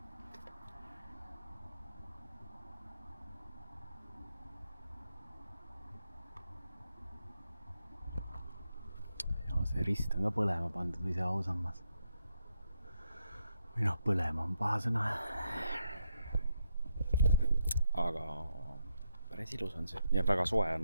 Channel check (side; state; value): both; inverted; correlation -0.80